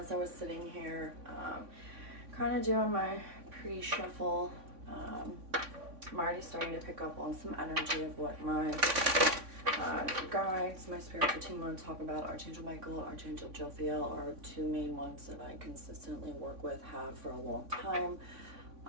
I was sitting here, kind of doing my pre-shuffle, I'm already starting to pick up on some energy of what my guides, my spiritual team want to talk about. Archangel Michael, Archangel Jophiel are two main ones that I consistently work with, have for a long time.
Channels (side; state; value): left; late; 3.5 ms